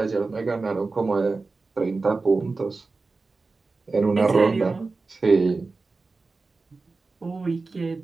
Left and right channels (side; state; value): left; quieter; 3.8 dB